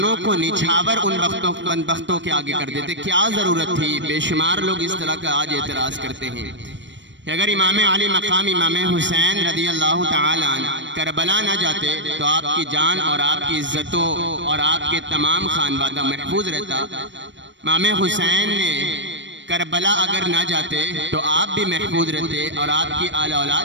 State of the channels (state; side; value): late; left; 0.53 ms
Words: کو نچھاور ان بختوں کے آگے کر دیتے، کیا ضرورت تھی؟ بے شمار لوگ اس طرح کا آج اعتراض کرتے ہیں کہ اگر امام علی مقام امام حسین رضی اللہ تعالی عنہ کربلا نہ جاتے تو آپ کی جان اور آپ کی عزتوں اور آپ کے تمام خانوادہ محفوظ رہتا۔ امام حسین نے کربلا اگر نہ جاتے تو آپ بھی محفوظ رہتے اور آپ کی آل